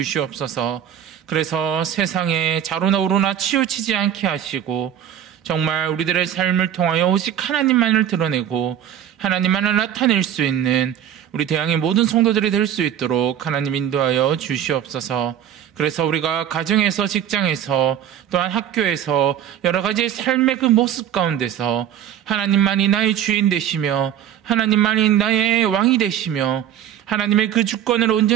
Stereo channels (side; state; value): left; quieter; 10.1 dB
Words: 그래서 세상에 자로나 우로나 치우치지 않게 하시고 정말 우리들의 삶을 통하여 오직 하나님만을 드러내고 하나님만을 나타낼 수 있는 우리 대항의 모든 성도들이 될 수 있도록 하나님 인도하여 주시옵소서. 그래서 우리가 가정에서, 직장에서, 또한 학교에서 여러 가지 삶의 그 모습 가운데서 하나님만이 나의 주인 되시며 하나님만이 나의 왕이 되시며 하나님의 그 주권을